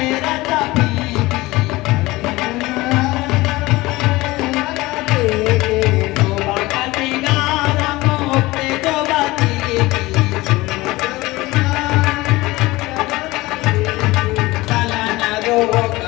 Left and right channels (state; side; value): quieter; right; 20.2 dB